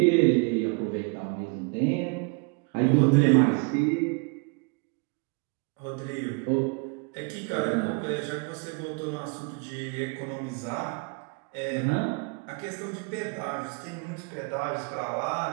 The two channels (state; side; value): quieter; left; 33.9 dB